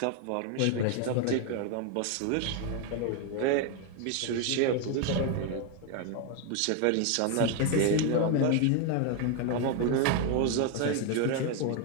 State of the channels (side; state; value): both; different; correlation 0.01